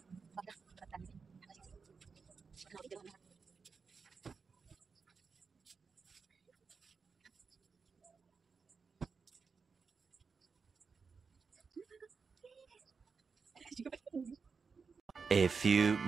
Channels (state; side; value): quieter; left; 5.2 dB